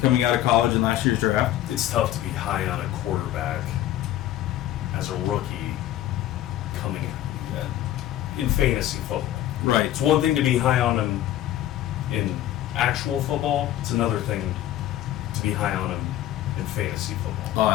out of college in last year's draft. It's tough to be high on a quarterback as a rookie coming in fantasy football. Right. It's one thing to be high on him in actual football. It's another thing to be high on him in fantasy football. Oh,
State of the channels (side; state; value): right; quieter; 13.3 dB